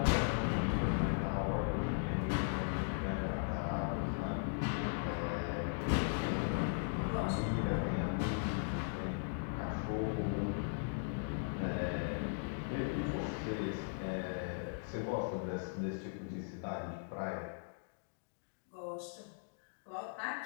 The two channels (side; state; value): right; silent; digital silence